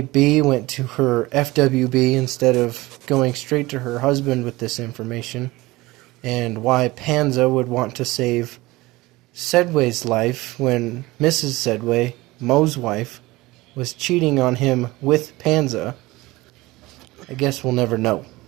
Bee went to her FWB instead of going straight to her husband with this information, and why Panza would want to save Sedway's life when Mrs. Sedway, Moe's wife, was cheating on him with Panza, I guess we'll never know.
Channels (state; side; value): quieter; left; 20.2 dB